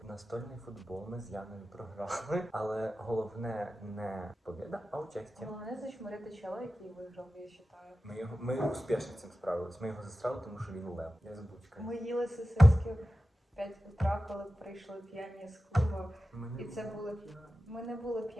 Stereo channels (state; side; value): normal; both; correlation 0.94